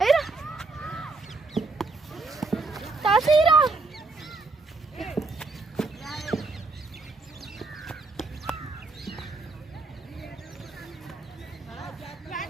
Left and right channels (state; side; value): quieter; left; 3.6 dB